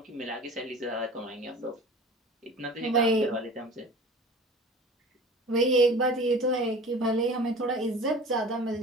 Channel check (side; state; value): both; normal; correlation 0.40